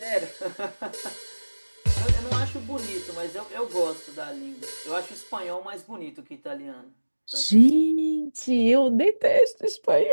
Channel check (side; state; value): both; inverted; correlation -1.00